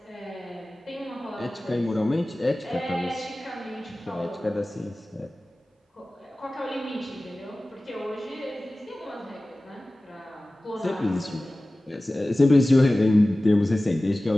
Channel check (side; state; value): both; normal; correlation 0.97